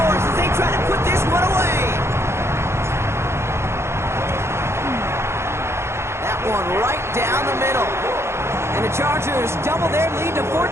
as they try to put this one away. That one right down the middle. And the Chargers double their lead to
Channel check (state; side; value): late; left; 0.13 ms